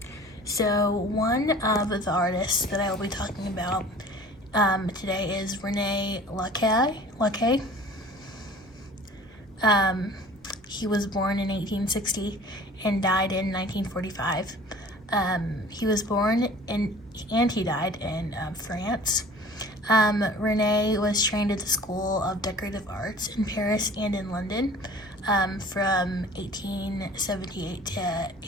So one of the artists that I will be talking about today is René Lacquer. He was born in 1860 and died in 1945. He was born and he died in France. René was trained at the School of Decorative Arts in Paris and in London from 1878 to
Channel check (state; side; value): normal; both; correlation 0.46